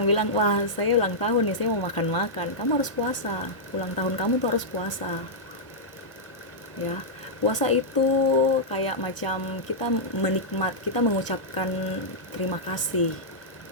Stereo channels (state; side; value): late; right; 1.0 ms